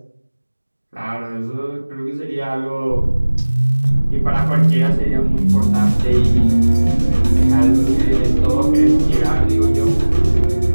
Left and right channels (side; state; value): both; inverted; correlation -1.00